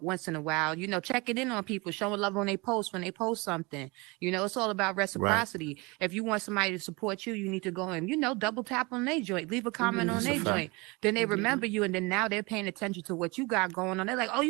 once in a while, checking in on people, showing love on their posts when they post something. It's all about reciprocity. If you want somebody to support you, you need to go and, double tap on their joint, leave a comment on their joint. Then they remember you, and then now they're paying attention to what you got going on. They're like, oh,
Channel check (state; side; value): quieter; left; 26.0 dB